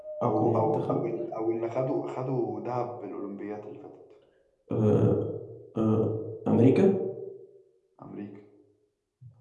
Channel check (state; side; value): identical; both; correlation 1.00